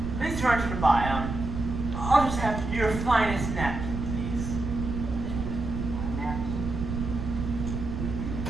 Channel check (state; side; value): noise; right; rumble, 5 dB below the sound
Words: too hard to buy? I'll just have your finest napkin, please.